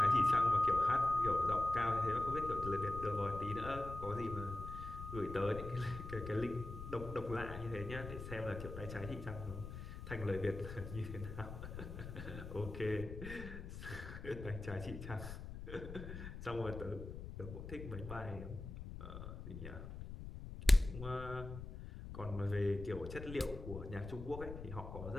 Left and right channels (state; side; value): noise; left; rumble, 9 dB below the sound